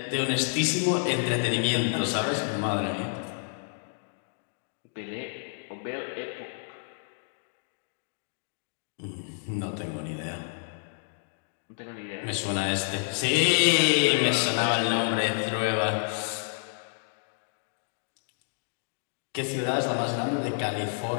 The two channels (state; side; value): silent; right; digital silence